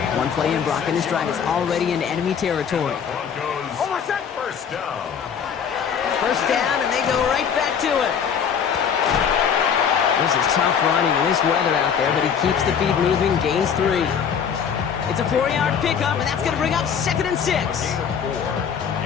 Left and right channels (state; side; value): quieter; right; 7.4 dB